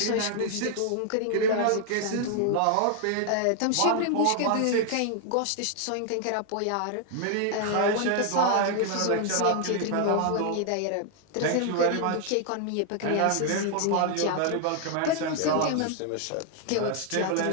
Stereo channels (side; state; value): both; different; correlation 0.00